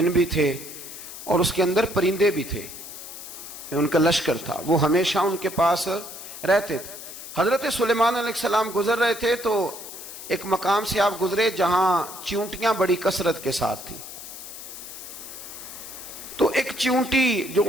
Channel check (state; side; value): noise; left; hiss, 12 dB below the sound